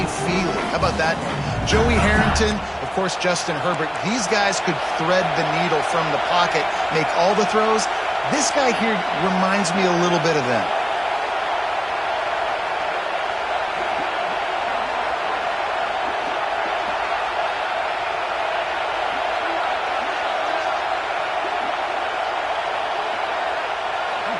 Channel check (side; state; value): both; identical; correlation 1.00